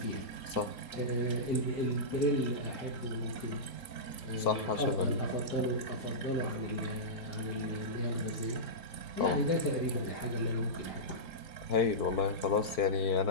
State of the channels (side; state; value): right; late; 3.8 ms